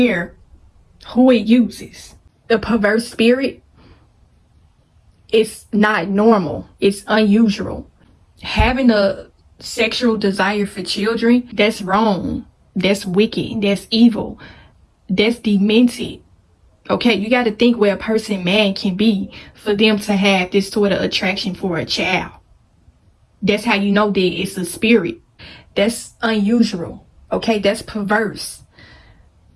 who it uses. The perverse spirit is not normal. It's unusual. Having a sexual desire for children, that's wrong. That's wicked. That's evil. That's demented. Okay, you got to think where a person, man, can be for them to have this sort of attraction for a child. That's how you know that it's a spirit. That's unusual. Okay, that's perverse.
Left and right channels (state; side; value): identical; both; correlation 1.00